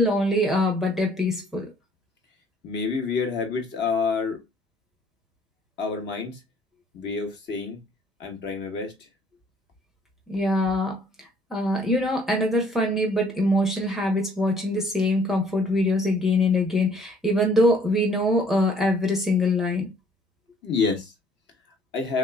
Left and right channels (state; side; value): normal; both; correlation 0.60